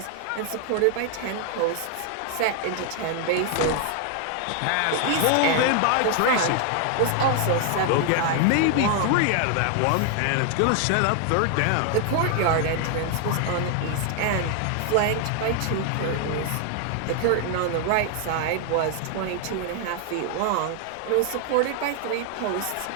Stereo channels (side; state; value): both; different; correlation 0.00